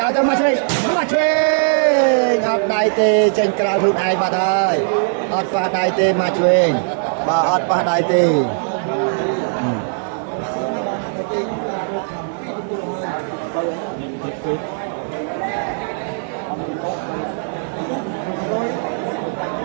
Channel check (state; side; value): silent; left; digital silence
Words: ឲ្យទៅមកឆ្វេងអត់ដៃទេចេញក្រៅខ្លួនឯងបាត់ហើយអត់ប៉ះដៃទេមកឆ្វេងបាទអត់ប៉ះដៃទេ